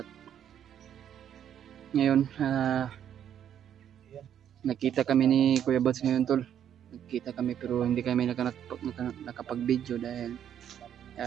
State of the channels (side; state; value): left; quieter; 9.7 dB